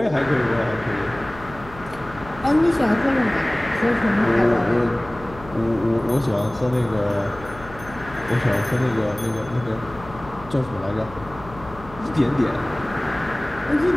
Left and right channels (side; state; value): left; noise; hum, 17 dB below the sound